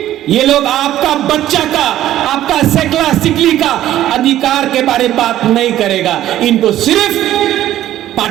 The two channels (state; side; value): quieter; left; 13.0 dB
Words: ये लोग आपका बच्चा का, आपका सेकला सिकली का अधिकार के बारे में बात नहीं करेगा। इनको सिर्फ